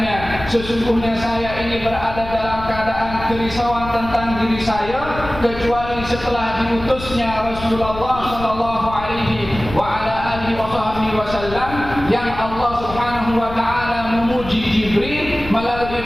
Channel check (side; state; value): left; noise; rumble, 11 dB below the sound